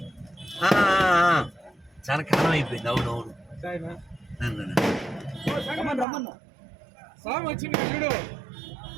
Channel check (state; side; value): drops out; left; at 6.1 s